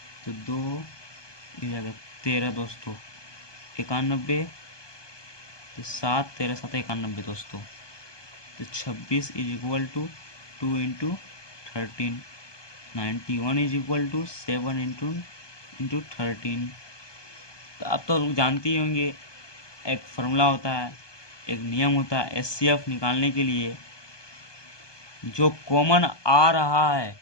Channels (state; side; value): late; right; 1.2 ms